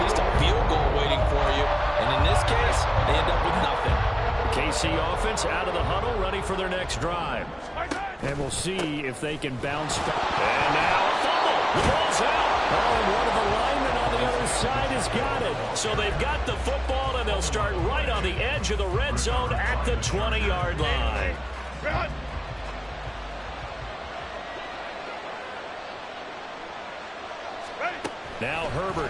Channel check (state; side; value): identical; both; correlation 1.00